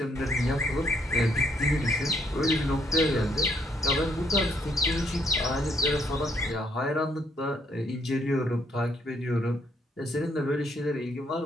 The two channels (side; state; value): both; normal; correlation 0.68